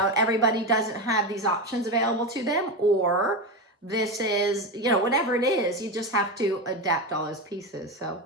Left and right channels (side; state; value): both; normal; correlation 0.18